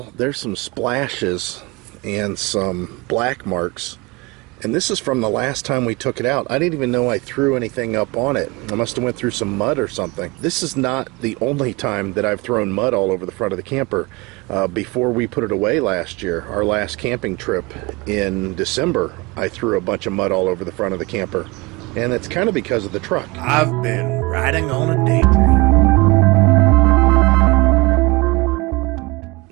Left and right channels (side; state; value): left; quieter; 24.5 dB